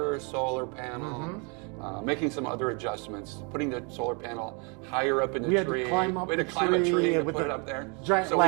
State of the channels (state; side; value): quieter; left; 34.2 dB